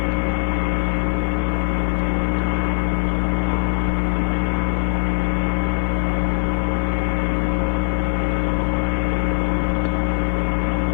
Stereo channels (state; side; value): silent; right; digital silence